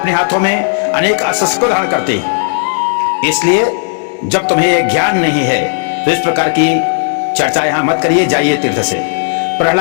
हाथों में अनेक अस्त्र क्यों धारण करती है? इसलिए जब तुम्हें यह ज्ञान नहीं है तो इस प्रकार की चर्चा यहां मत करिए, जाइए तीर्थ से।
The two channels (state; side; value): silent; right; digital silence